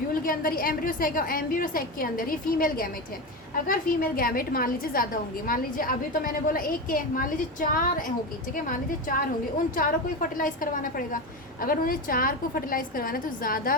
के अंदर ही एम्ब्रियो सैक है, एम्ब्रियो सैक के अंदर ही फीमेल गैमेट है। अगर फीमेल गैमेट मान लीजिए ज़्यादा होंगे, मान लीजिए अभी तो मैंने बोला 1 के, मान लीजिए 4 होगी, ठीक है, मान लीजिए 4 होंगे, उन चारों को ही फर्टिलाइज करवाना पड़ेगा। अगर उन्हें 4 को फर्टिलाइज करवाना है तो ज़्यादा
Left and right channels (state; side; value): normal; both; correlation 0.19